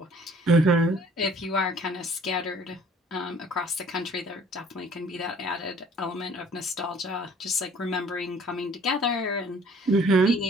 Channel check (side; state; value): both; normal; correlation 0.55